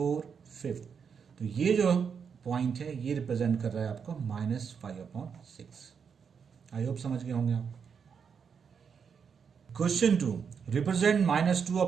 5। तो ये जो पॉइंट है ये रिप्रेजेंट कर रहा है आपको -5 अपॉन 6। आई होप समझ गए होंगे आप। Question 2, represent -2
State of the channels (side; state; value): left; quieter; 6.6 dB